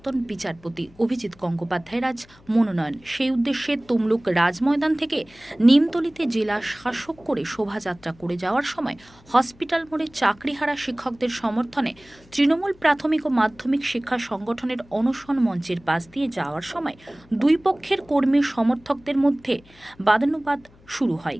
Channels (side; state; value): left; noise; hum, 27 dB below the sound